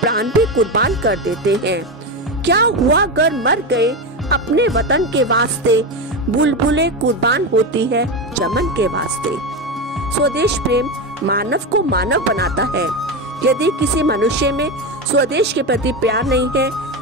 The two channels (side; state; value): both; normal; correlation 0.16